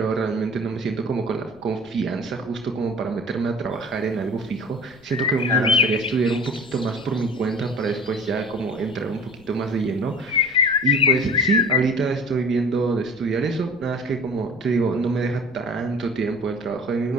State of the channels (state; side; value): noise; left; rumble, 25 dB below the sound